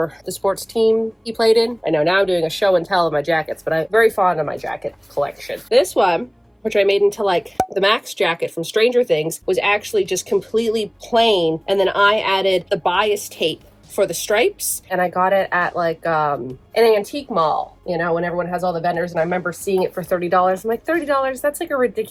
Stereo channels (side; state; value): both; identical; correlation 1.00